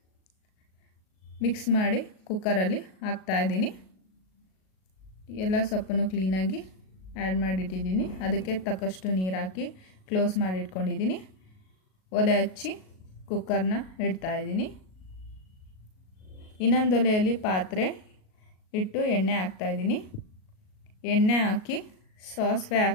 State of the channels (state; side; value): late; right; 38 ms